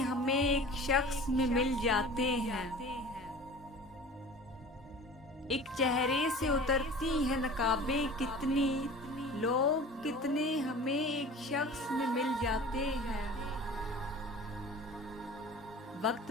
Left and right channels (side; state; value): both; normal; correlation 0.41